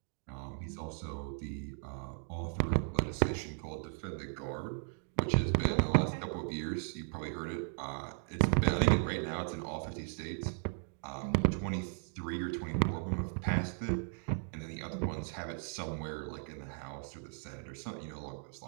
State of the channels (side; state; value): left; silent; 53 dB below the other